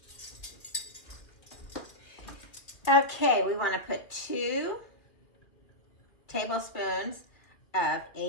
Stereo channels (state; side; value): late; right; 2.4 ms